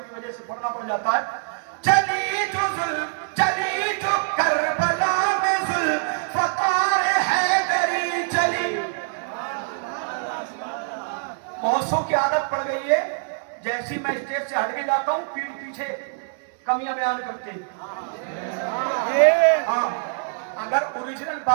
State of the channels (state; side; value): silent; left; digital silence